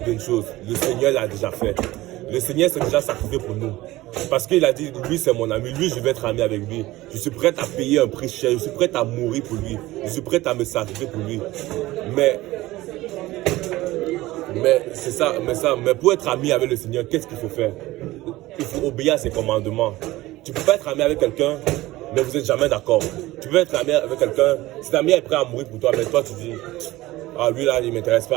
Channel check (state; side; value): quieter; left; 17.9 dB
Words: d'une chose, le Seigneur l'a déjà fait. Le Seigneur s'est déjà sacrifié pour nous. Parce qu'il a dit, lui c'est mon ami, lui je vais être ami avec lui. Je suis prêt à payer un prix cher, je suis prêt à mourir pour lui. Je suis prêt à me sacrifier pour lui. Mais c'est ça, mais pour être ami avec le Seigneur, qu'est-ce qu'il faut faire? Il faut obéir à ses commandements. Tu ne peux pas être ami avec quelqu'un, mais vous n'êtes jamais d'accord. Tu peux être ami avec quelqu'un, cet ami est prêt à mourir pour toi, mais toi tu dis, ah lui là, il ne m'intéresse